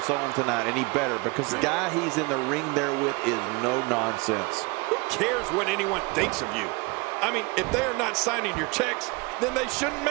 on tonight, and he better, because the guy he's in the ring there with is no nonsense. Who cares what anyone thinks of you? I mean, if they are not signing your checks, then they shouldn't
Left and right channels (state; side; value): quieter; left; 26.9 dB